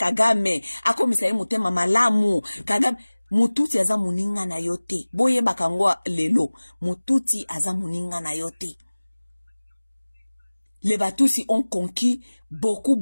akomisa mutema malamu, Kagame mututi aza muninga na yote. Boye bakangwa lelo, mututi aza muninga na yote. Les Batusi ont conquis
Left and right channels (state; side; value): inverted; both; correlation -1.00